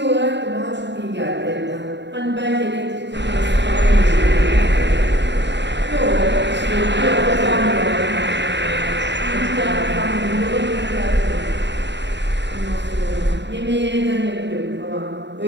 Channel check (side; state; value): left; late; 0.52 ms